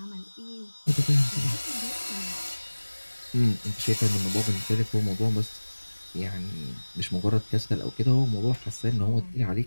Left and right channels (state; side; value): inverted; both; correlation -1.00